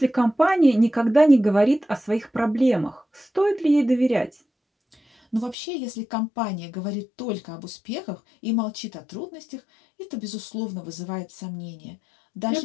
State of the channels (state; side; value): drops out; right; at 5.6 s